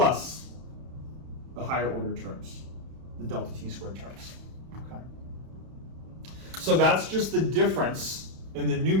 the higher order terms, the delta t squared terms. Okay. So that's just the difference in the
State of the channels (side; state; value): left; late; 31 ms